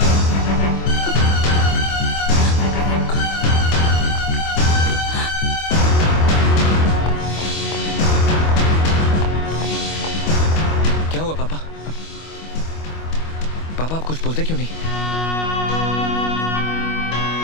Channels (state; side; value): late; right; 25 ms